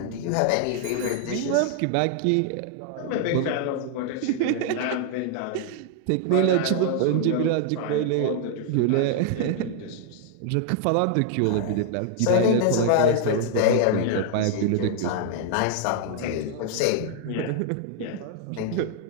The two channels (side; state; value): both; different; correlation 0.00